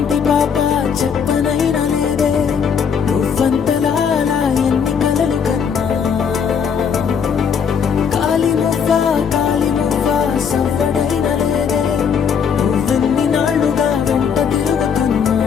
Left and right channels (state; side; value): quieter; right; 6.9 dB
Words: పాప చెప్పనైనా లేదే నువ్వంతలా అలా ఎన్ని కలలు కన్నా. కాలి మువ్వ సవ్వడైనా లేదే నువ్వెన్ని నాళ్ళుగా వెంట తిరుగుతున్నా.